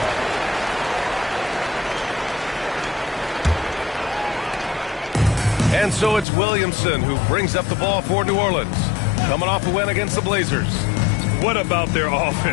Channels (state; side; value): drops out; right; at 6.2 s